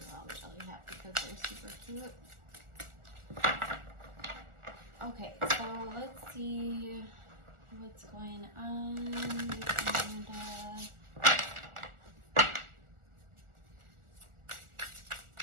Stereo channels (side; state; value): left; late; 1.4 ms